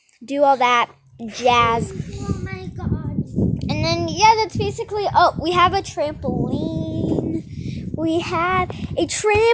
do all that jazz. Oh my god! And then yeah, that's basically. Oh, we have a trampoline. We have a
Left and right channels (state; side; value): identical; both; correlation 1.00